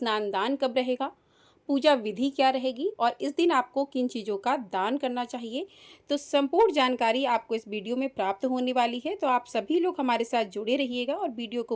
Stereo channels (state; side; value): identical; both; correlation 1.00